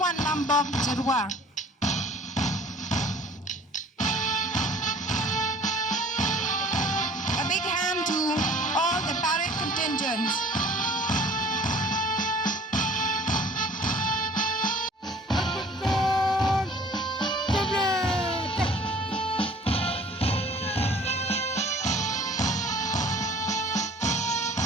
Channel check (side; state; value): both; normal; correlation 0.51